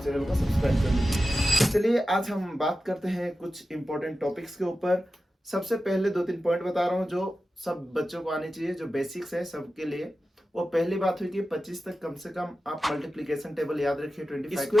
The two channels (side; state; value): both; normal; correlation 0.93